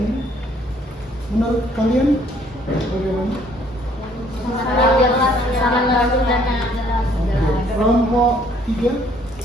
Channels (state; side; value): normal; both; correlation 0.62